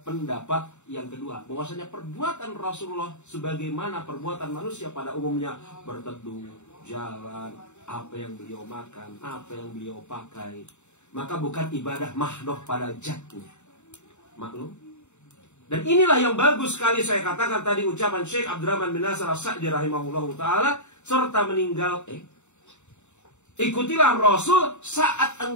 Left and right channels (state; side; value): late; right; 0.83 ms